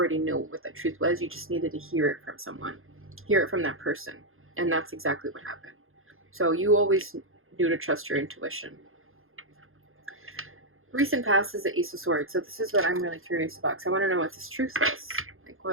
knew what that truth was. You just needed to hear it from someone, hear it from that person, and that's exactly what happened. So you always knew to trust your intuition. Recent past is the Ace of Swords. So this is what I'm really curious about, because I want to know what this truth is. Like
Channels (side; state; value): left; late; 0.60 ms